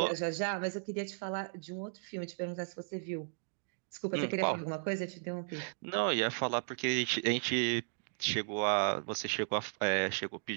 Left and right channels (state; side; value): silent; left; digital silence